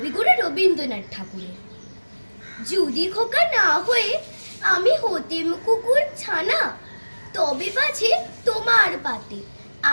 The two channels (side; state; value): both; inverted; correlation -1.00